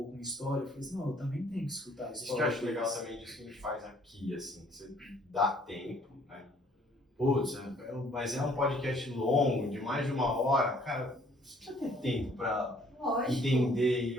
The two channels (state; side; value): normal; both; correlation 0.61